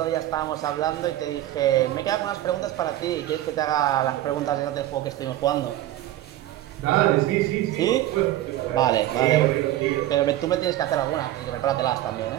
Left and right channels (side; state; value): left; quieter; 14.0 dB